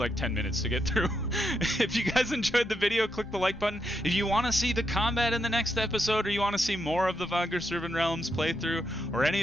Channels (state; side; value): normal; both; correlation 0.82